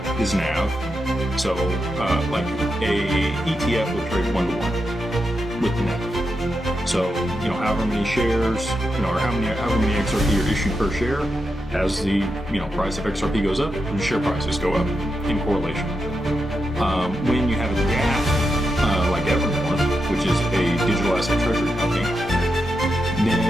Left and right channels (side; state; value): both; normal; correlation 0.86